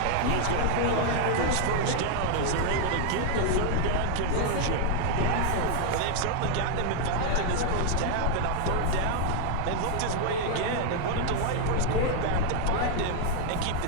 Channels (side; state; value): both; different; correlation 0.00